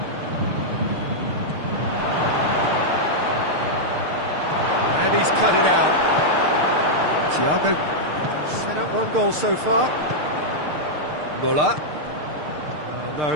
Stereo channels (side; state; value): left; late; 6.6 ms